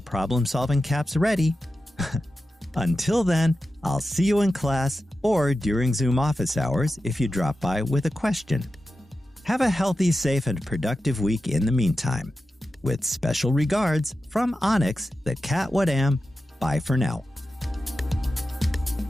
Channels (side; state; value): both; normal; correlation 0.92